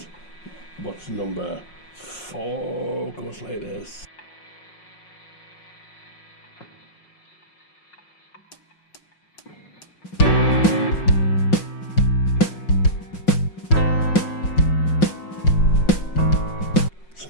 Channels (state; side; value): late; right; 5.5 ms